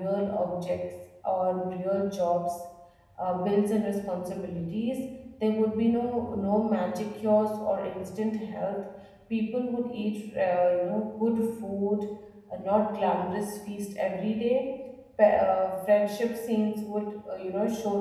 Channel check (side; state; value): both; identical; correlation 1.00